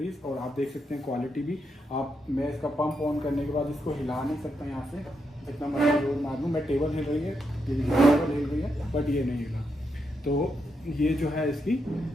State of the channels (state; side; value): normal; both; correlation 0.82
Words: और आप देख सकते हैं क्वालिटी भी। मैं इसका पंप ऑन करने के बाद इसको हिला नहीं सकता यहाँ से, इतना मर्जी जोर मार लूँ। मैं टेबल हिल रही है, टेबल हिल रही है, बट ये नहीं हिला। तो ये जो है इसकी